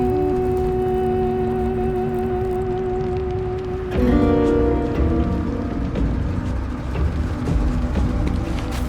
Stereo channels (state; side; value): identical; both; correlation 1.00